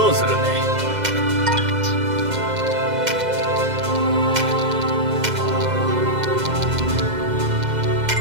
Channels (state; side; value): late; left; 2.0 ms